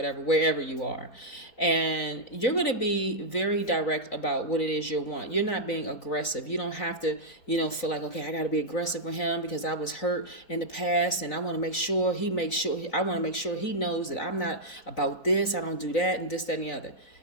wherever you are. And you're going to be very direct about what it is you want. You're not being aggressive. You don't have to, feel like, okay, I got to be aggressive with him because I was hurt in the past and I want to make sure I want to make sure he knows that I'm not about this, I don't do that, and this, that, and the other.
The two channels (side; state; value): right; late; 4.0 ms